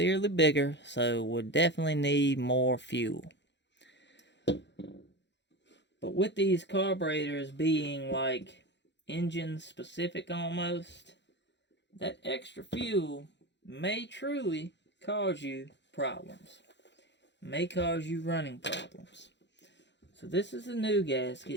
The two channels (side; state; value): right; late; 0.52 ms